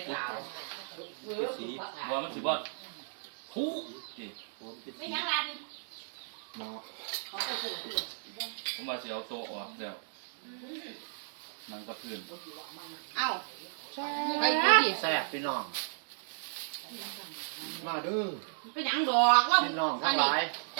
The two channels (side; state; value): left; silent; digital silence